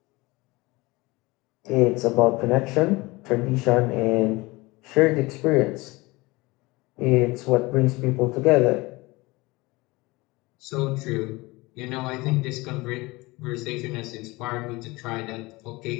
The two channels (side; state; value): right; quieter; 22.8 dB